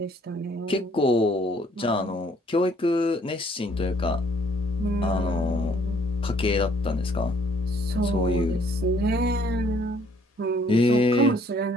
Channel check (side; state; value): both; normal; correlation 0.62